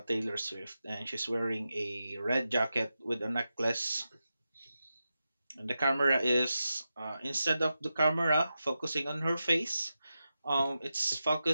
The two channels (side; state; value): both; inverted; correlation -0.90